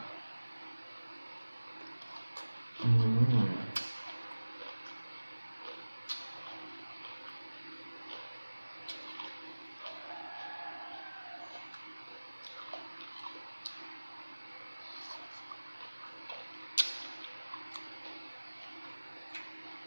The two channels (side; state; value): both; inverted; correlation -1.00